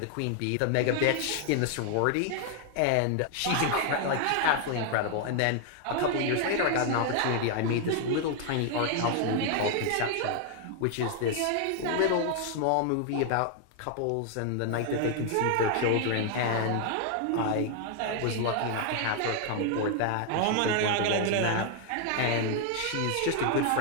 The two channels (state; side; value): different; both; correlation 0.00